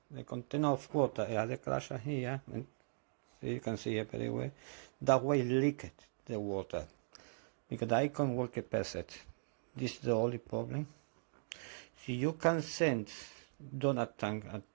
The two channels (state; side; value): silent; left; digital silence